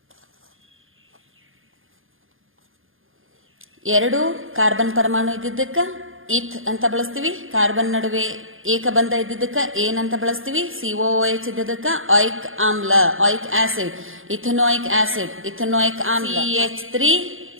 ಎರಡು ಕಾರ್ಬನ್ ಪರಮಾಣು ಇದ್ದಿದ್ದಕ್ಕ ಇಥ್ ಅಂತ ಬಳಸ್ತೀವಿ. ಕಾರ್ಬನ್ ನಡುವೆ ಏಕಬಂಧ ಇದ್ದಿದ್ದಕ್ಕ ಏನಂತ ಬಳಸ್ತೀವಿ, COOH ಇದ್ದಿದ್ದಕ್ಕ ಆಯಿಕ್ ಆಮ್ಲ, ಆಯಿಕ್ ಆಸಿಡ್, ಇಥನೋಯಿಕ್ ಆಸಿಡ್, ಇಥನೋಯಿಕ್ ಆಮ್ಲ.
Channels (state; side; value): late; left; 0.59 ms